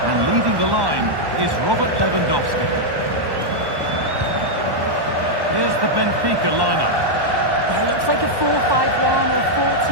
leading the line is Robert Lewandowski. Here's the Benfica lineup. Yeah, it looks like a 4-5-1 or a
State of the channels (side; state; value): left; late; 1.1 ms